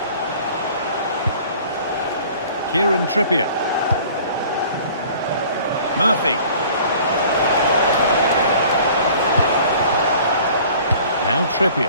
Kieran Trippier. Murphy. Now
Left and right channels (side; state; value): both; inverted; correlation -0.49